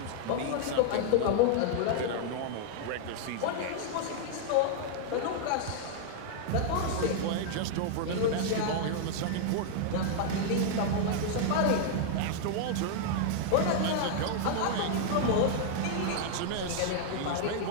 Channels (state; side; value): different; both; correlation -0.01